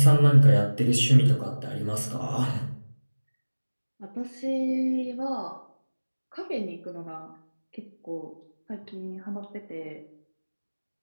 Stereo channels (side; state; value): both; inverted; correlation -1.00